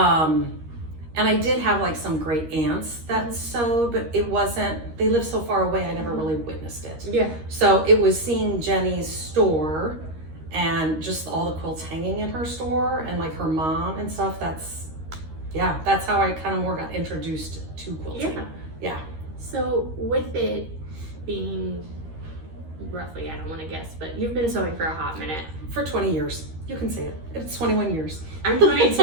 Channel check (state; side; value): late; left; 13 ms